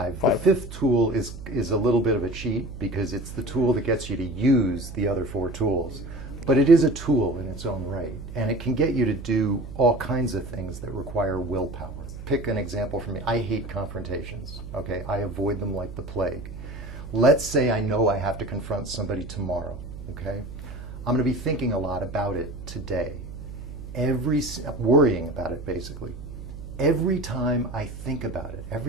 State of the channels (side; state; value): right; noise; hum, 11 dB below the sound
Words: The 5. 5th tool is a little bit of a cheat because it's the tool that gets you to use the other 4 tools. But it is a tool in its own right, and it can get you to do all kinds of things that require willpower. Pick an example for me. I hate confrontations, okay? I avoid them like the plague. Let's say I know I have to confront somebody tomorrow, okay? I'm going to be thinking a lot about it today. Worrying about it, basically. Every time I think about it,